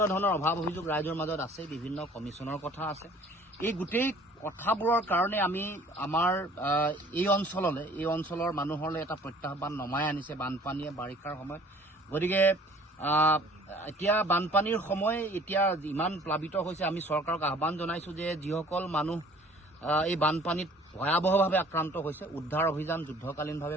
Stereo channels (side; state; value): both; normal; correlation 0.52